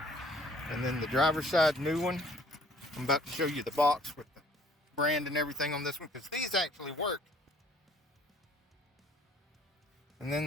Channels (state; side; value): normal; both; correlation 0.58